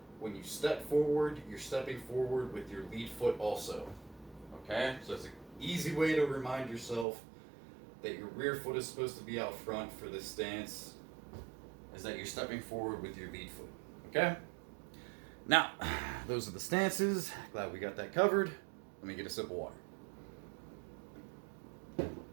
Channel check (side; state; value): left; drops out; at 7.1 s